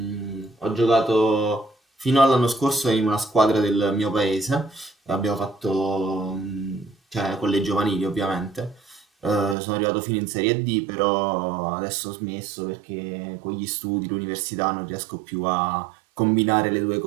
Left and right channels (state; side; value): drops out; left; at 9.6 s